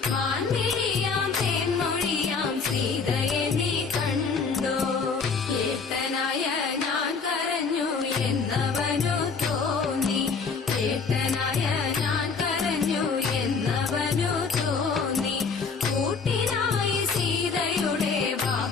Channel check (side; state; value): right; quieter; 5.1 dB